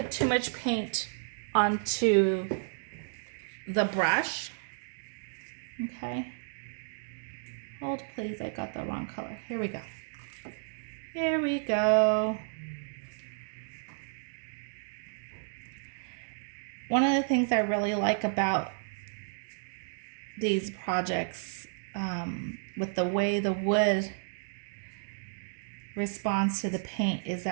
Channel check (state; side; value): silent; left; digital silence